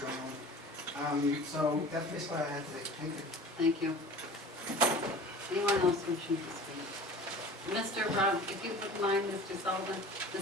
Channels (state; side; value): normal; both; correlation 0.41